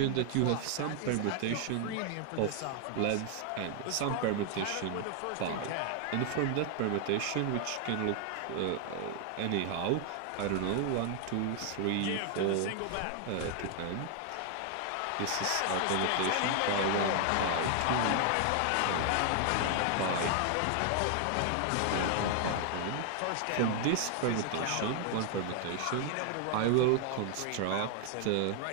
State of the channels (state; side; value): different; both; correlation 0.00